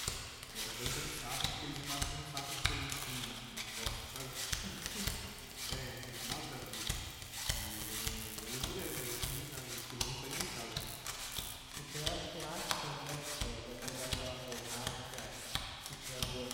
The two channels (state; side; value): identical; both; correlation 1.00